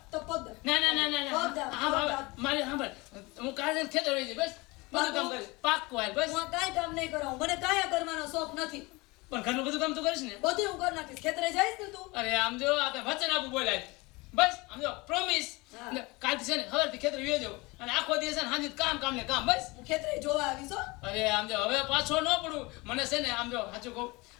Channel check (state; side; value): quieter; right; 24.3 dB